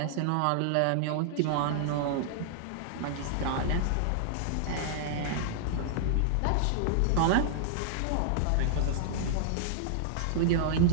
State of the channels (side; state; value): both; different; correlation -0.01